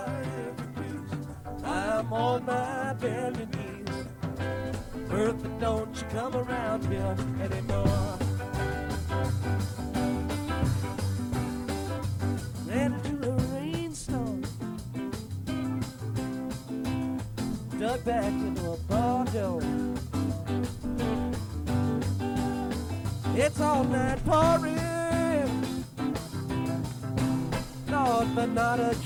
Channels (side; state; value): both; identical; correlation 1.00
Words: I'm on my bended knees. Bertha, don't you come around here anymore. Into a rainstorm, dug back into a bar door. It's all night pouring, Lord, but not a